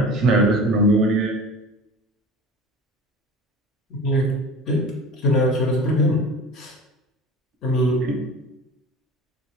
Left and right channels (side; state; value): both; normal; correlation 0.37